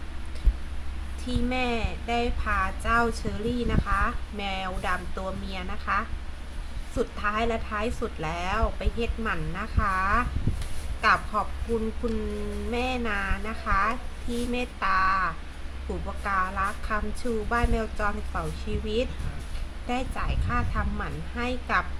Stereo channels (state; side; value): identical; both; correlation 1.00